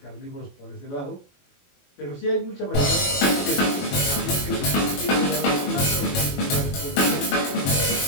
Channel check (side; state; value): right; late; 21 ms